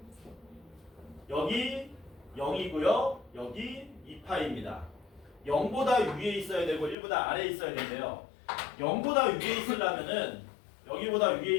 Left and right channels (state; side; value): drops out; right; at 7.0 s